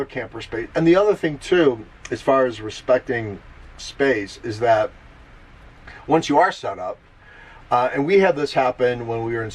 camper space. And the other thing too, as far as respecting space, is that once you are set up, and we had this happen when we were in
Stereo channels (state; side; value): identical; both; correlation 1.00